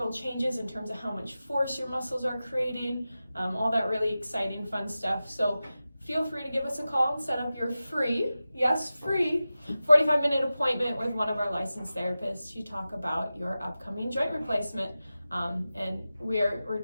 changes in terms of how much force your muscles are creating, all that really exciting, fun stuff. So feel free to give us a call and set up your free 45-minute appointment with one of our licensed therapists to talk about your upcoming joint replacement. And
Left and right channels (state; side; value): inverted; both; correlation -0.94